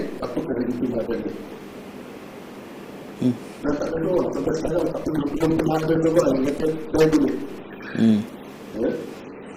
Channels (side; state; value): both; identical; correlation 1.00